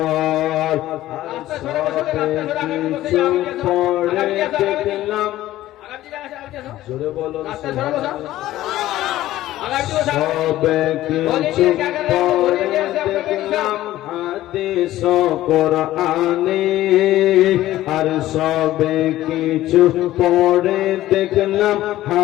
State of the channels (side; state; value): right; quieter; 14.9 dB